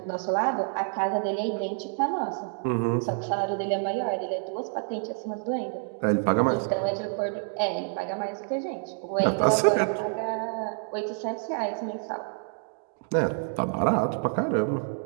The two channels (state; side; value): silent; left; 57 dB below the other